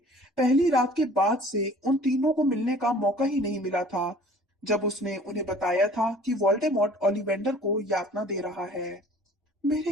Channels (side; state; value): both; normal; correlation 0.50